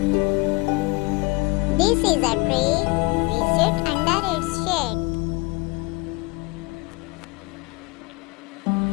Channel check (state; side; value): quieter; right; 25.5 dB